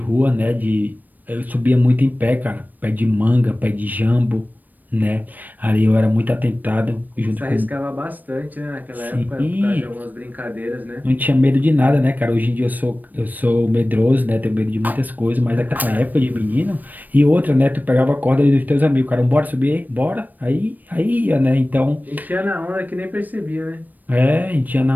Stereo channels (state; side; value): late; left; 0.087 ms